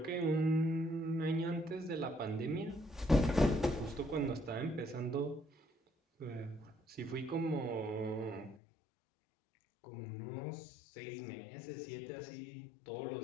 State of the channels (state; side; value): drops out; right; at 8.6 s